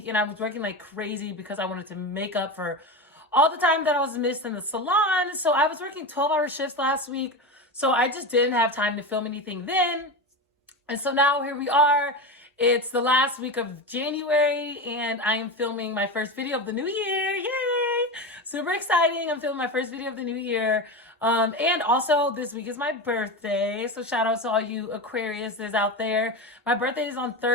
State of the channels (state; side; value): normal; both; correlation 0.21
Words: and I was working like crazy because I wanted to make up for all the time that I was missed in the salon. So I was working 12-hour shifts last week. So I just didn't have time to film anything then. And so now here we are. It's the last week of January, and I am filming my first video of the new year. Yay! Super exciting. I'm filming my first video of the new year. And also this week is my birthday. So shout out to all you Aquariuses out there. My birthday is on